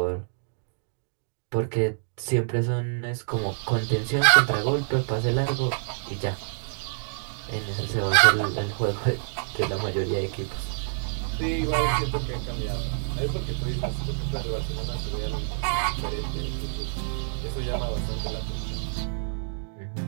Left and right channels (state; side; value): silent; left; digital silence